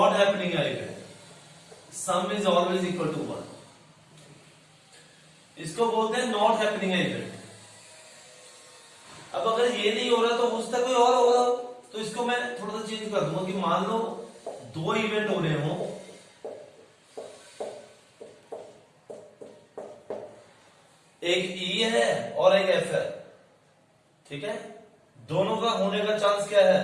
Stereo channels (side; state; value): both; identical; correlation 1.00